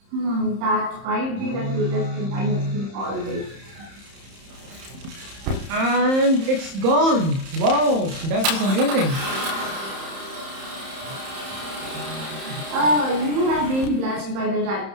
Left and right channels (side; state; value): left; late; 30 ms